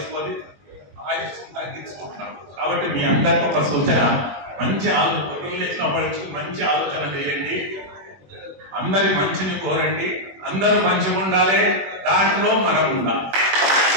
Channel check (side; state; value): left; late; 21 ms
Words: ఆయుష్యం తగ్గించుకుంటున్నాం. కాబట్టి మీ అందరికీ ఒక సూచన, మంచి మంచి ఆలోచన చేయండి, అందరి మంచిని కోరండి, అందరూ మంచిగా ఉండాలి, దాంట్లో మనం ఉండాలి.